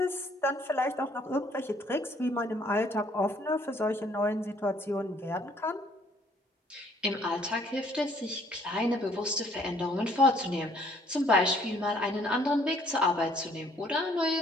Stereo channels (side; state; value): both; normal; correlation 0.62